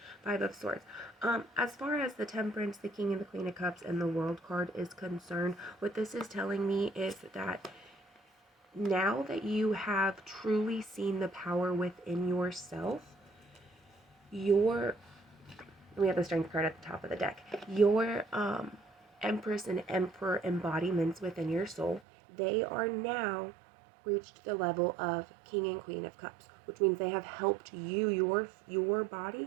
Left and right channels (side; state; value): left; drops out; at 22.0 s